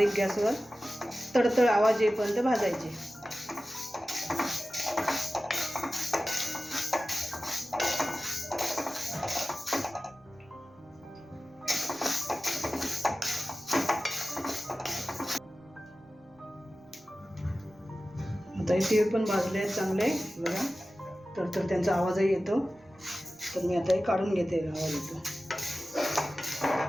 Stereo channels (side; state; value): right; noise; rumble, 30 dB below the sound